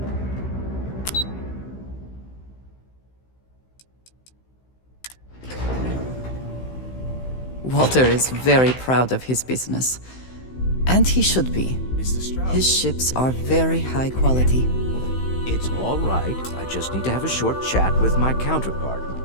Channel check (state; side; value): late; right; 16 ms